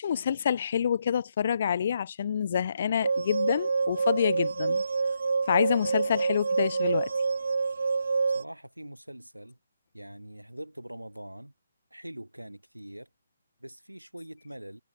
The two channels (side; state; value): both; inverted; correlation -0.79